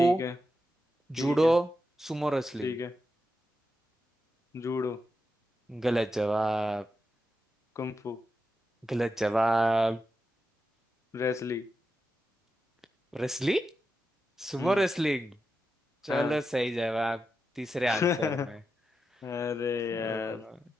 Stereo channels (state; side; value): normal; both; correlation 0.88